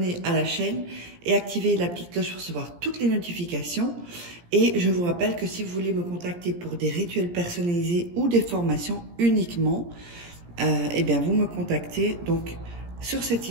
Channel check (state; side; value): late; left; 17 ms